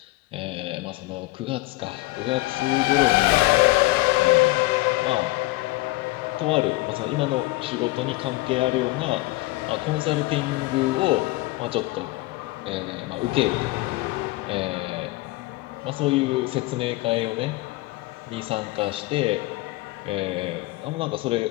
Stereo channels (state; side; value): quieter; right; 20.5 dB